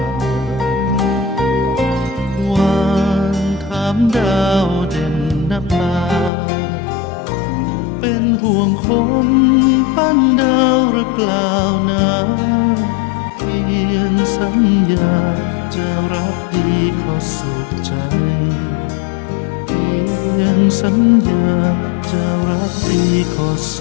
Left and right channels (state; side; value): drops out; right; at 6.3 s